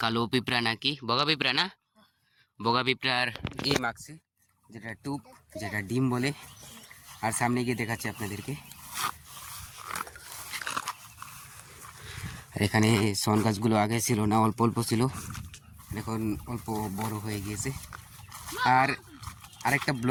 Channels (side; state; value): both; identical; correlation 1.00